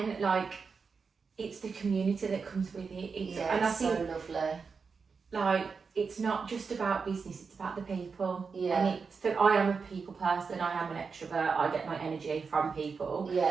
like, it's the community that comes with it. And I think, so lovely. Like, it's not just about business, it's about the people. Yeah. And I am a people person, I am an extrovert, I get my energy from people.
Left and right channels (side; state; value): left; quieter; 5.2 dB